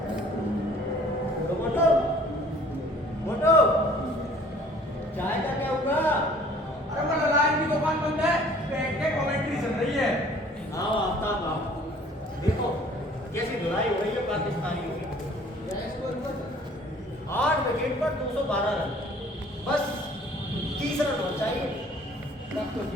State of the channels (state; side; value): normal; both; correlation 0.53